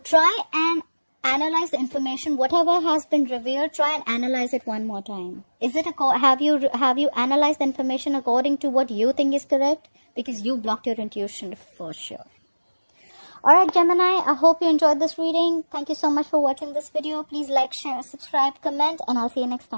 try and analyze the information. Whatever has been revealed, try and analyze it one more time. Is it have you analyzed the information according to what you think is correct? Because you blocked your intuition for sure. Alright, Gemini, I hope you enjoyed this reading. Thank you so much for watching this video. Please like, share, subscribe, comment, and I'll see you next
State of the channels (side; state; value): both; inverted; correlation -1.00